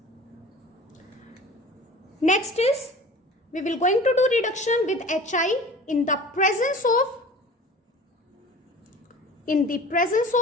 Next is, we will going to do reduction with Hi in the presence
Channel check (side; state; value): both; normal; correlation 0.41